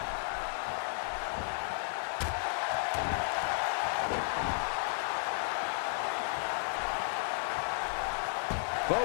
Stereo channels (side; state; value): right; silent; 55 dB below the other